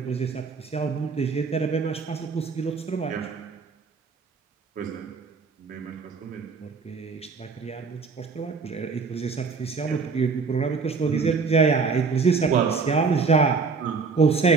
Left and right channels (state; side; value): quieter; left; 4.9 dB